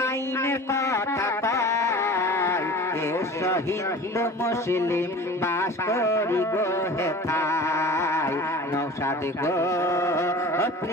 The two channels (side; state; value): both; normal; correlation 0.40